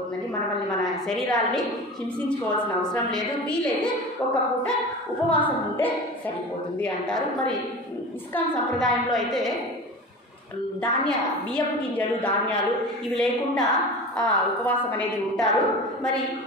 మనల్ని మన శరీరాన్ని హింసించుకోవాల్సిన అవసరం లేదు. వీలైతే ఒక్క పూట ఉపవాసం ఉంటే సరిపోతుంది అంటారు. మరి ఇస్కాన్ సంప్రదాయంలో అయితే బియ్యపు గింజలు, ధాన్యాలు ఇవి లేకుండా ఉపవాసం అనేది ఉంటారు. మరి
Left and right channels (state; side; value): normal; both; correlation 0.33